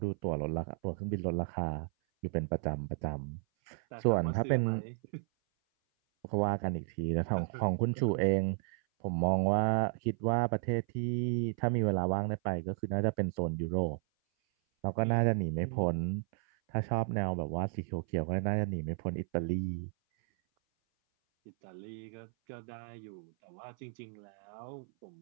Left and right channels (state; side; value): silent; left; 55 dB below the other